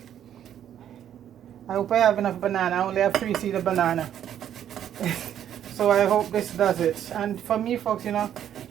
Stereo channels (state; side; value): quieter; left; 10.2 dB